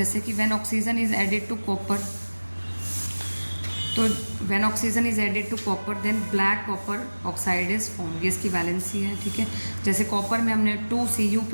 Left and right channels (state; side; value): inverted; both; correlation -1.00